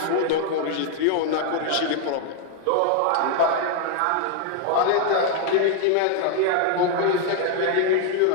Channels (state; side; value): different; both; correlation 0.00